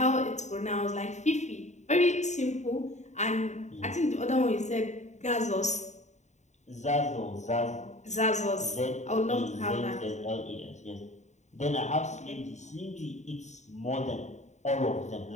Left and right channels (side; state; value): right; late; 0.34 ms